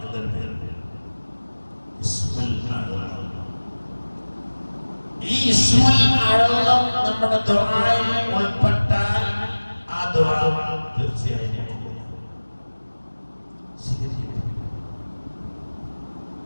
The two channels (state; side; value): inverted; both; correlation -1.00